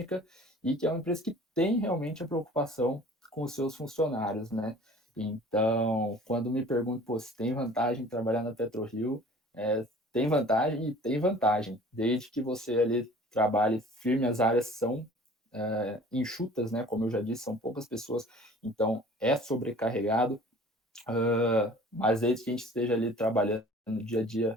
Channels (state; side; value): normal; both; correlation 0.47